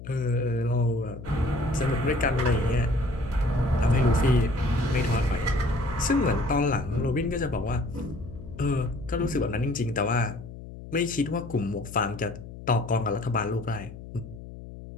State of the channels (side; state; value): left; noise; hum, 13 dB below the sound